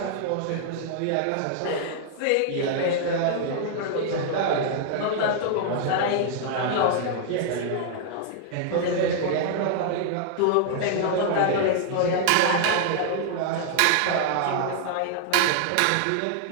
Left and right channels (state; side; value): different; both; correlation 0.00